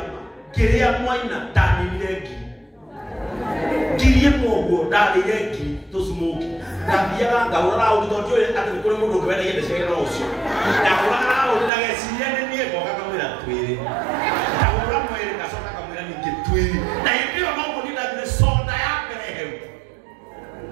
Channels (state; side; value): drops out; left; at 11.7 s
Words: Kiria mwaina tani milegi. Kirie mogo dali legi to smoke. Na biara ngawara utoto ati kule mundu kwenda yende shega no usio. Na kula unaga siyene ni eko kakamira twiri. Na kula mwere kasoka kamira ni kitwiri. Na hivyo mambo ni ndani soda yake rehem.